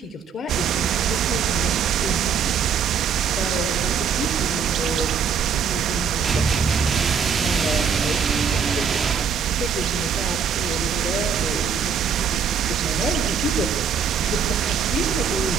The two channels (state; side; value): quieter; left; 6.6 dB